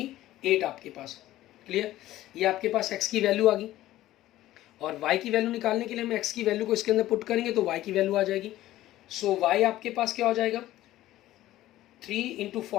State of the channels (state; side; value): quieter; right; 14.9 dB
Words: आपके पास। क्लियर, ये आपके पास x की वैल्यू आ गई, और y की वैल्यू निकालने के लिए हम x की वैल्यू को इसके अंदर पुट करेंगे तो y की वैल्यू आ जाएगी। सो y आपके पास क्या हो जाएगा 3 ×